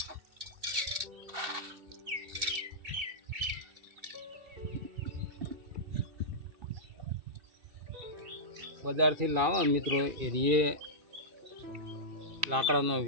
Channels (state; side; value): late; left; 2.7 ms